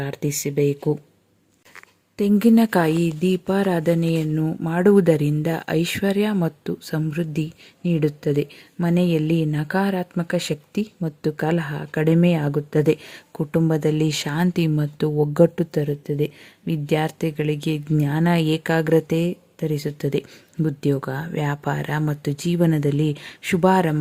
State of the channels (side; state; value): both; identical; correlation 1.00